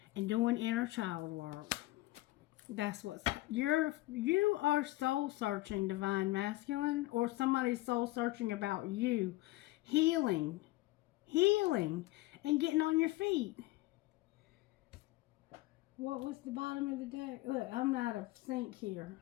and doing inner child work. That's what's you are soul searching, divine masculine, or somebody's soul searching about you, healing, and getting on your feet. What was the bottom of the deck? Look, I'm out of sync here.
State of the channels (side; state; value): right; quieter; 18.9 dB